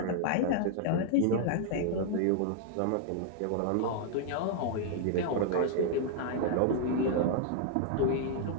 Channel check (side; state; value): both; different; correlation 0.00